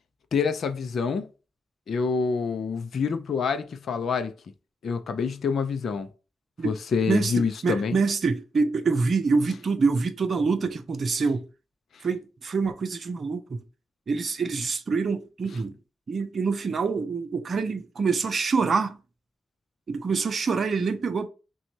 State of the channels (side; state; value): both; normal; correlation 0.80